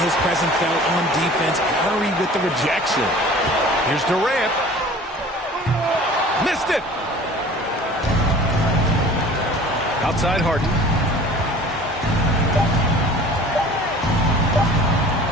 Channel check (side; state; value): both; normal; correlation 0.45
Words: his presence felt on defense. Curry with the rejection. Here's Durant. Missed it! Outside Harden.